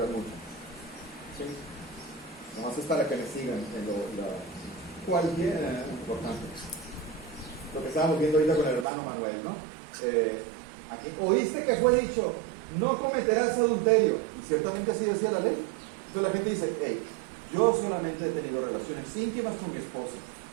mucho. ¿Sí? Nomás es para que me sigan en cualquier importante. lo que estábamos viendo ahorita con el hermano Manuel, ¿no? Aquí, oíste que fue dicho, no cometerás adulterio, y ciertamente así decía la ley. Entonces la gente dice, hey, yo solamente he tenido relaciones íntimas con mi esposa,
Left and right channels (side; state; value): left; drops out; at 8.8 s